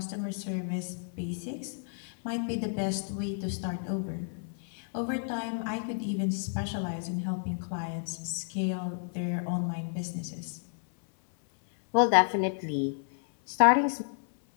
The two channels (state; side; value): silent; right; 57 dB below the other